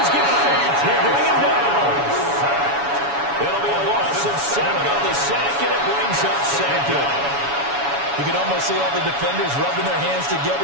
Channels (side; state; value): left; late; 7.1 ms